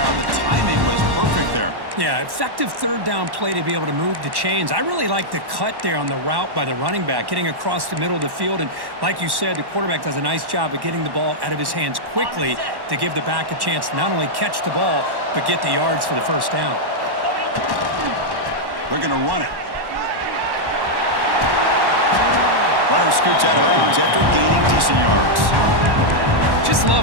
The timing was perfect there. Yeah, effective 3rd down play to be able to move the chains. I really like the cut there on the route by the running back, getting across the middle of the field. And like you said, the quarterback does a nice job of getting the ball out of his hands quickly to give the back a chance to not only catch the ball, but get the yards for the 1st down. They're going to run it. Runner scoots out of bounds after gaining decent yards. Just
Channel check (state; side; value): late; left; 1.1 ms